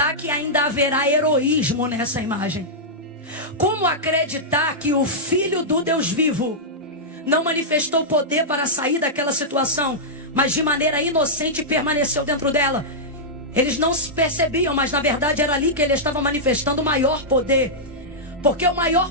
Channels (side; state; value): both; normal; correlation -0.10